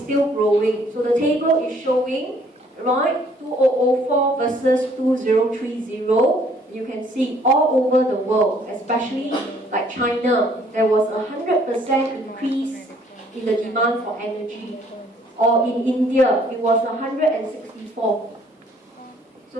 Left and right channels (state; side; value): normal; both; correlation 0.61